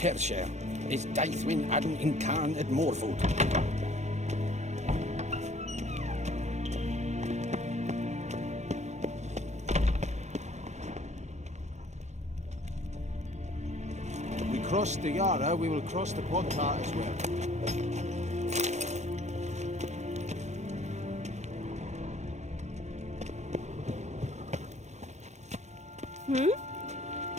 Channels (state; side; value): late; left; 0.33 ms